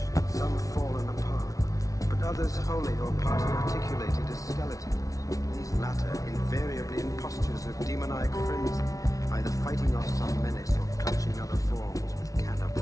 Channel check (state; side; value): late; right; 0.17 ms